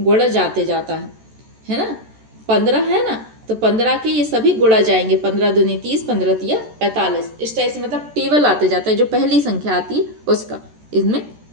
जाते जाता है ना। 15 है ना, तो 15 के ये सभी गुणा जाएंगे। 15 दूनी 30, 15 तिया 45। इस टाइप से मतलब टेबल आते जाता है, जो पहली संख्या आती है उसका इसमें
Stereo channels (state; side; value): late; left; 14 ms